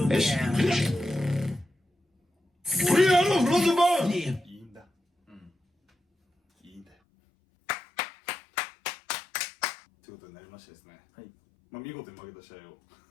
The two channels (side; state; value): right; drops out; at 6.9 s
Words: there. We are the Rosenborg! いいんだ。いいんだよ。ということになりましてですね。はい。まあ、見事に負けた試合を